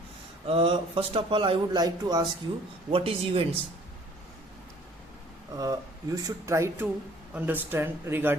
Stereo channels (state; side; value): normal; both; correlation 0.55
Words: First of all, I would like to ask you, what is events? You should try to understand